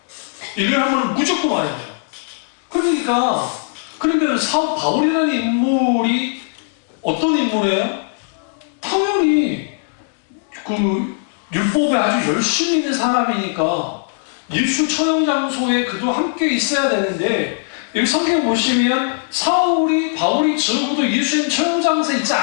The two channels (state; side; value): silent; right; digital silence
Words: 1년에 한 번은 무조건 와야 돼요. 그러니까 그러면 바울이라는 인물이 어떤 인물이에요? 당연히 율법에 아주 열심히 있는 사람이니까 예수 처형 장소에 그도 함께 있어야 되는데 여기 성경 보시면 바울이 적어도 예수님 처형 장소에 있지